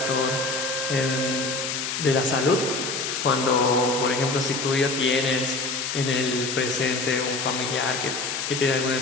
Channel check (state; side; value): noise; left; hiss, 3 dB below the sound